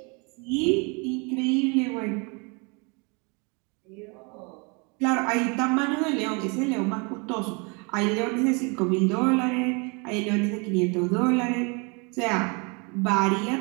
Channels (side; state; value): left; quieter; 31.7 dB